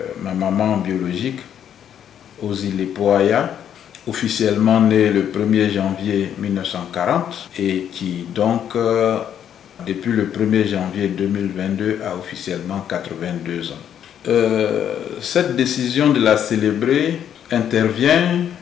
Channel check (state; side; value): quieter; right; 9.4 dB